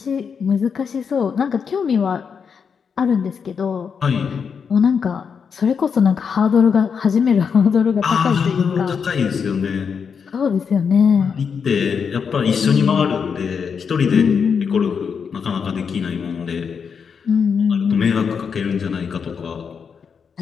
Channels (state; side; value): quieter; right; 6.4 dB